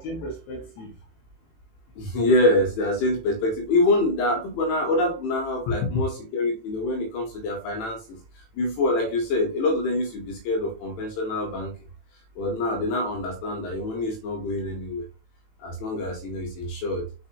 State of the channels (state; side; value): late; right; 18 ms